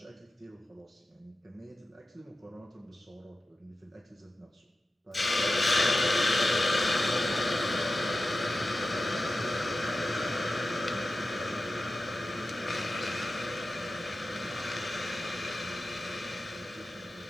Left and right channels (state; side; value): normal; both; correlation 0.93